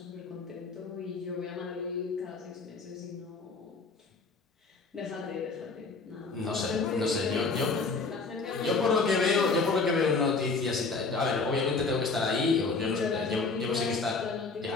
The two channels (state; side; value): quieter; right; 4.2 dB